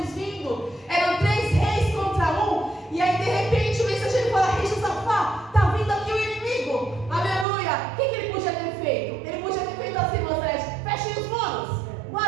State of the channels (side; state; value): left; drops out; at 7.5 s